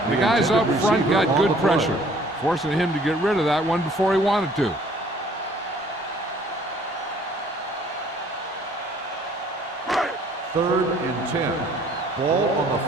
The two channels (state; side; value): normal; both; correlation 0.57